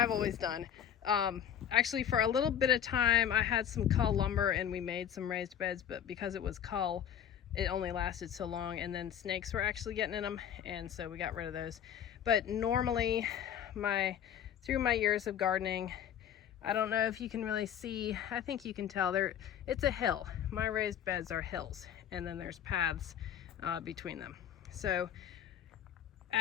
always done. Actually, for a little bit of time I had some cull lumber and we made some raised beds, but because it was cull, it only lasted so long, and then snakes were actually getting in them, and so we got rid of those. But normally through my years of gardening, I don't know if you can really see, I think you can tell it's a hill. My raised beds are hills, and then there's paths between them. So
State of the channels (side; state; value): right; quieter; 9.5 dB